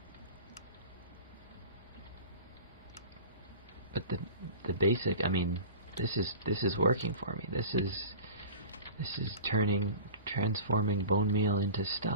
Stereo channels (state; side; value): inverted; both; correlation -0.37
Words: But the basic, this is working for me. This is transforming bone meal into